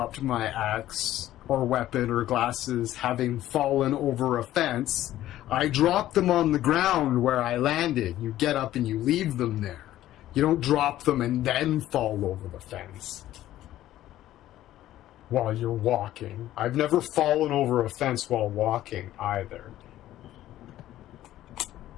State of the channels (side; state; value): right; quieter; 13.8 dB